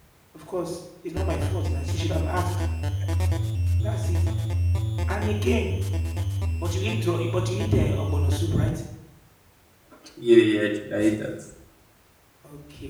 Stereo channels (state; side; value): identical; both; correlation 1.00